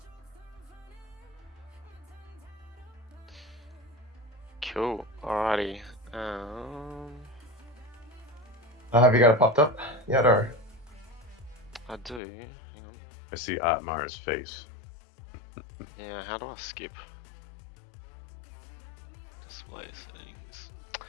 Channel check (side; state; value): right; drops out; at 12.2 s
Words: Cool. Alrighty. Have you got it popped up yet, or? I do. Hang on. I see Otmar's face. Yeah, how do I skip? Display settings.